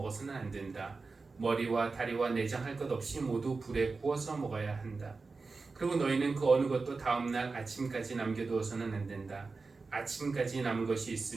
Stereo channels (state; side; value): quieter; left; 4.1 dB